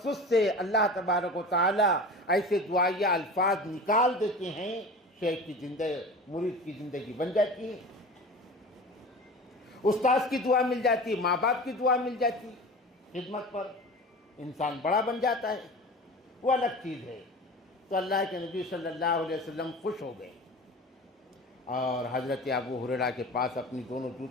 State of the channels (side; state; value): both; normal; correlation 0.34